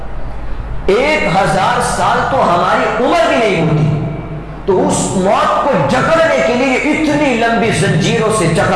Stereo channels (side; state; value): both; identical; correlation 1.00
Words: 1000 سال تو ہماری عمر بھی نہیں ہوتی، تو اس موت کو جکڑنے کے لیے اتنی لمبی زنجیروں سے